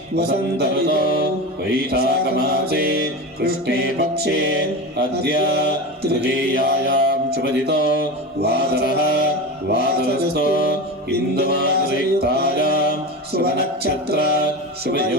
वसन्त ऋतौ वैशाखमासे कृष्णे पक्षे अद्य तृतीयायां शुभदितो वासरः वासरस्थो इन्दुमासयुक्तायां शुभनक्षत्र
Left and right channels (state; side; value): normal; both; correlation 0.25